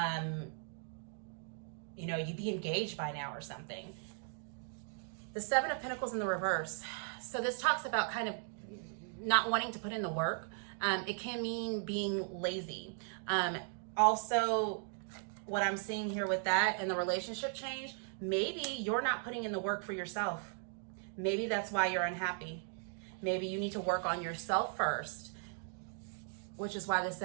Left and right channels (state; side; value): silent; left; 53 dB below the other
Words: you know, you'd be engaged by now or something. The 7 of Pentacles in the reverse. So this talks about kind of not wanting to put in the work. It can mean being lazy. Also, what I'm seeing here with that and the relationship change, maybe you're not putting in the work for yourself. Maybe that's why you're unhappy. Maybe you need to work on yourself first, which is why the